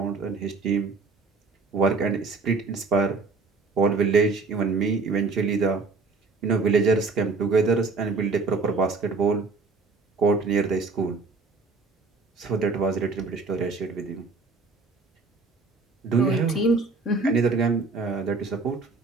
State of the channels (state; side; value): quieter; left; 4.1 dB